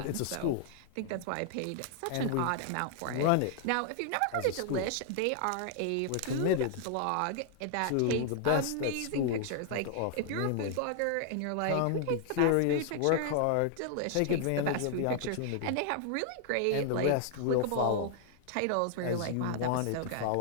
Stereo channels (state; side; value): different; both; correlation -0.01